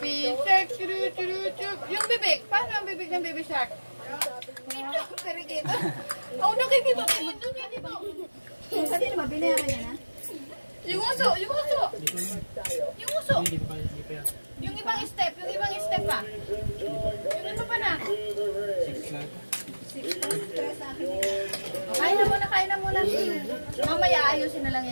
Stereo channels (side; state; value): both; inverted; correlation -1.00